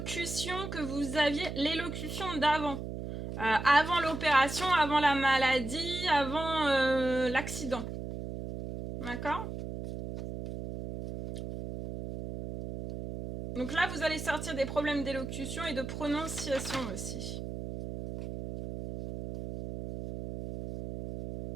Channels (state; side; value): noise; right; hum, 7 dB below the sound